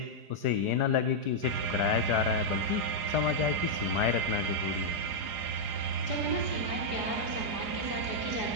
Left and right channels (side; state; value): left; late; 4.9 ms